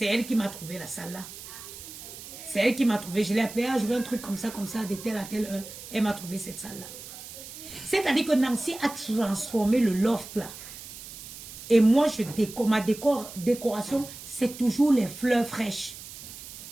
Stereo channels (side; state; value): right; noise; hiss, 13 dB below the sound